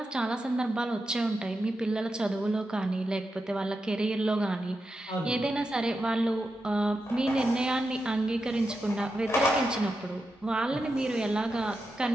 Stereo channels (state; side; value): normal; both; correlation 0.88